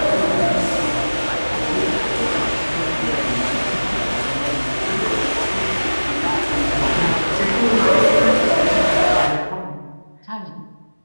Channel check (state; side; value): inverted; both; correlation -1.00